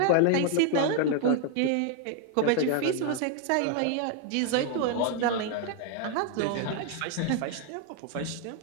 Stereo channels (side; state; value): both; different; correlation 0.00